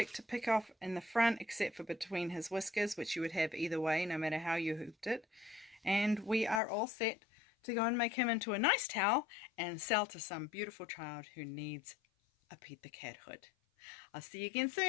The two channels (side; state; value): right; drops out; at 6.6 s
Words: to pick off in the front except for between his whiskers, which you would have either way no matter how you hooped it. And we are all set to go and make him into a nice towel and sell to some beautiful child who needs a Pete the Cat hood. I'll see you again